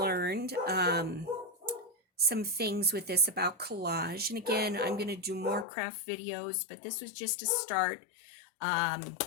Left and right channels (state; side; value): drops out; right; at 5.7 s